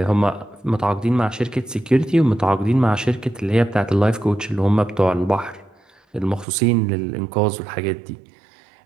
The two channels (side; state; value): left; drops out; at 6.5 s